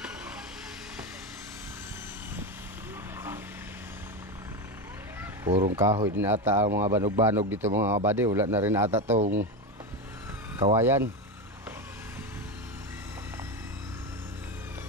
Purong kahoy din ata ang mga banog-banog dito mga kabady. Wala na rin ata tong kawayan.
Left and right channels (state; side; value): normal; both; correlation 0.16